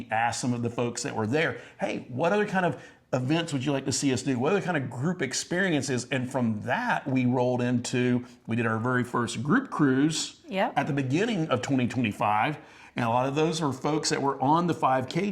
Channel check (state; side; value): identical; both; correlation 1.00